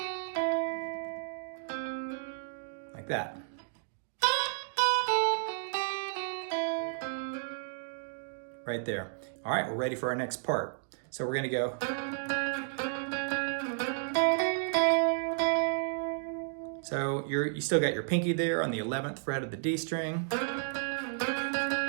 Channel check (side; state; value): left; silent; digital silence